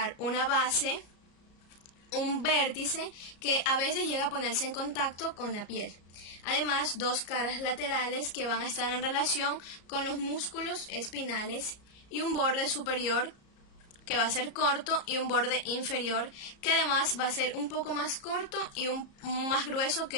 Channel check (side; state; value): right; late; 34 ms